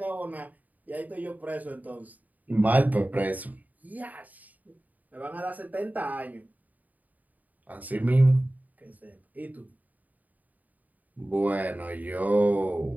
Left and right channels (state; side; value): late; left; 0.078 ms